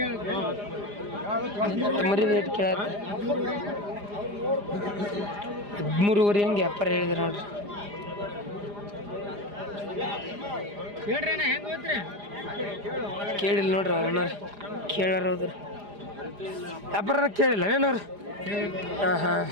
ಮರಿ ರೇಟ್ ಕೇಳತ್ತ 13.5 ಹಂಗೆ ವ್ಯಾಪಾರ ಹೇಳಿದ್ರೆ ನೋಡ್ರಿ. ಕೇಳಿಲ್ಲ ನೋಡ್ರಿ ಅವ್ರು, ಕೇಳಾರ ಹೋದ್ರಿ ವ್ಯಾಪಾರ ಕೇಳಿಲ್ಲ ಏನವ್ರು. ಹಾಂ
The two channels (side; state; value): left; late; 4.9 ms